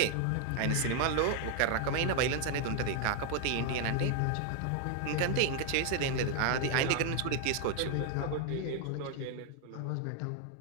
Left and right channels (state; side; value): different; both; correlation 0.00